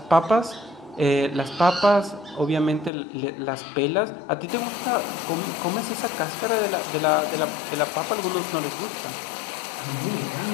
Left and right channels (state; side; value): drops out; right; at 2.9 s